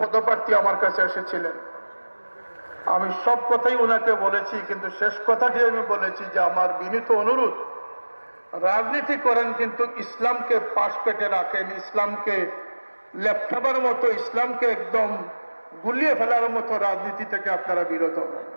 পদপ্রার্থী আমার কাছে এসেছিলেন। আমি সব কথাই ওনাকে বলেছি, কিন্তু শেষ কথাটি আমি বলেছি যে আমার বিনীত অনুরোধ, রাজনীতি করেন কিন্তু ইসলামকে পাশ পেটে রাখেন, ইসলামকে লেপটাবার মতো, ইসলামকে একদম গুলিয়ে ফেলার মতো রাজনীতি থেকে আপনারা বিরত হন।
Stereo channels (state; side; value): inverted; both; correlation -1.00